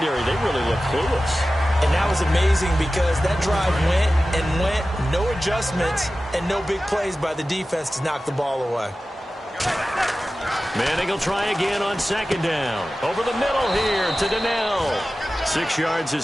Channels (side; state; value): both; normal; correlation 0.95